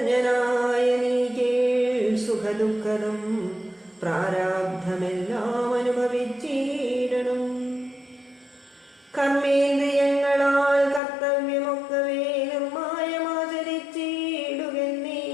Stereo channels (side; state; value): right; drops out; at 11.0 s